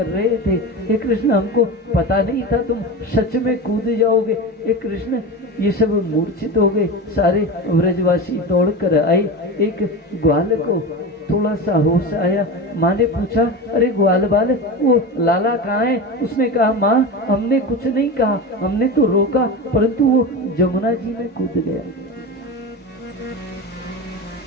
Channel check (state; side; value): normal; both; correlation 0.25